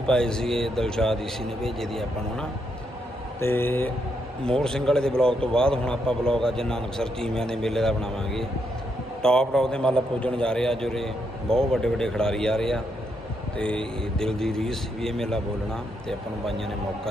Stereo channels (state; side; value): normal; both; correlation 0.79